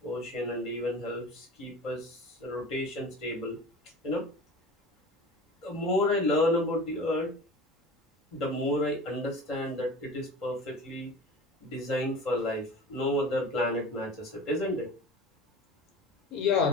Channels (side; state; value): both; normal; correlation 0.36